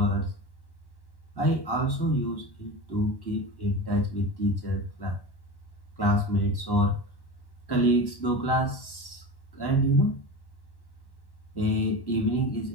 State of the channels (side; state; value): right; late; 1.1 ms